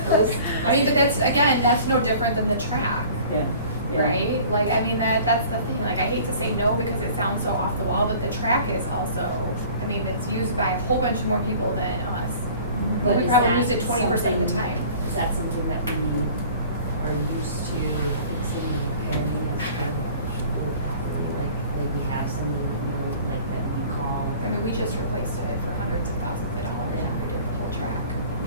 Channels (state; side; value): inverted; both; correlation -0.47